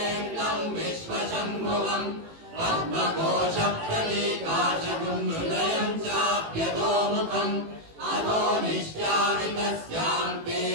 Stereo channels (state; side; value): late; left; 18 ms